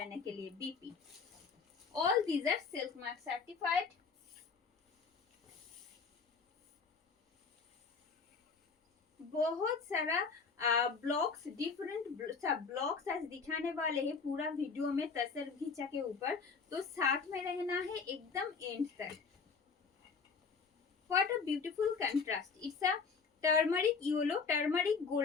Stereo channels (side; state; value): right; quieter; 5.2 dB